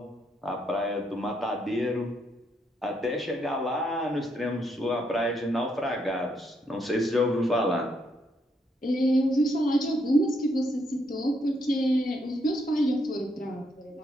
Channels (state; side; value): normal; both; correlation 0.76